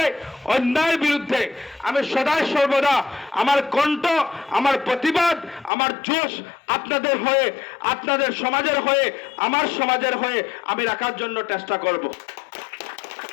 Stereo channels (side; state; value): right; drops out; at 5.7 s